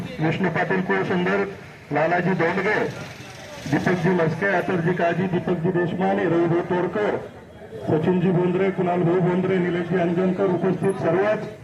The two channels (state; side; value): identical; both; correlation 1.00